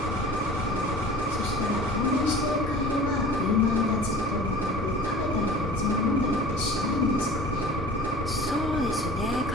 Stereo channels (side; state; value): both; normal; correlation 0.41